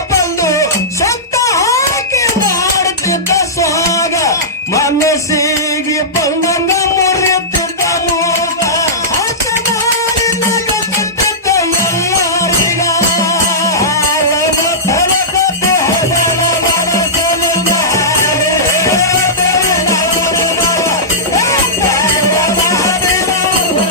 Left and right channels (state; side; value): normal; both; correlation -0.15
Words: ಬಂದು ಸತ್ತ ಹಾಕಿ ಮಾಡುತ್ತಿದ್ದ ಸ್ವಾಗ, ಮನಸ್ಸಿಗೆ ಬಂದಂಗ ಮುರಿಯುತ್ತಿದ್ದ ಮೂಗ, ಆಟ ಮಾಡಿ ನಗುತ್ತಿದ್ದ ಎಲ್ಲರಿಗ.